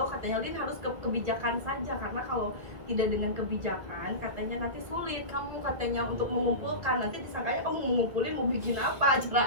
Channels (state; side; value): late; left; 1.7 ms